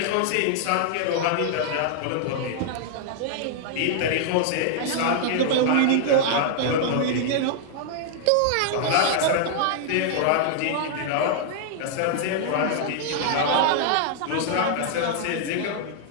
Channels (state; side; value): different; both; correlation -0.01